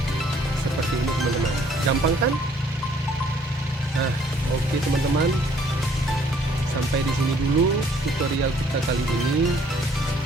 seperti ini teman-teman, gampang kan? Nah, oke teman-teman, sampai di sini dulu tutorial kita kali ini.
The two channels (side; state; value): both; normal; correlation 0.61